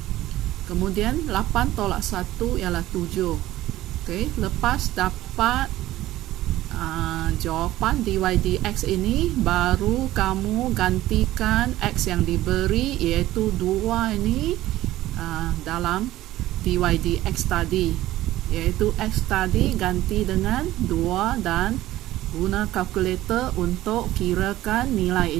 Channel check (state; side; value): quieter; left; 15.4 dB